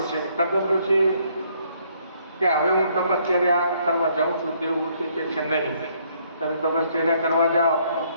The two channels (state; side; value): inverted; both; correlation -0.67